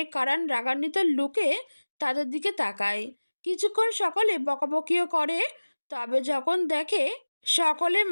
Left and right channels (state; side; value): inverted; both; correlation -1.00